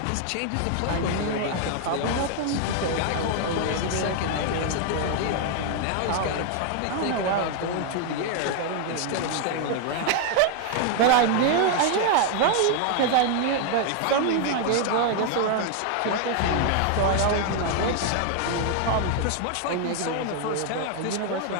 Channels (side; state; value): both; different; correlation 0.00